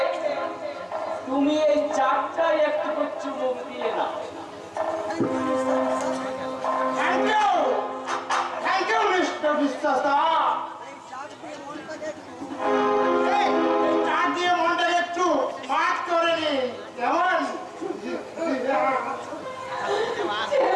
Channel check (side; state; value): both; identical; correlation 1.00